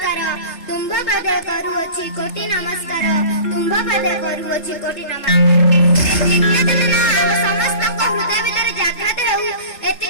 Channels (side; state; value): right; late; 3.4 ms